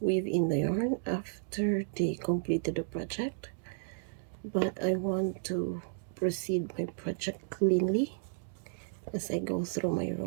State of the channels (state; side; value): silent; left; digital silence